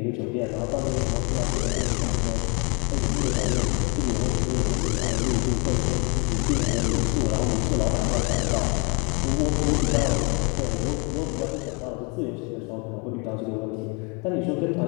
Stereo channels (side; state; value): right; quieter; 32.4 dB